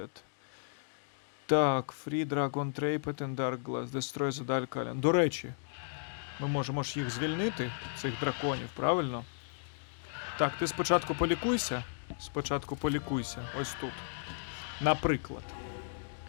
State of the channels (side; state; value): right; silent; digital silence